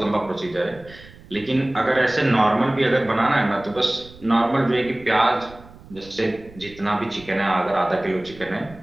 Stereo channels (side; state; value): right; noise; rumble, 21 dB below the sound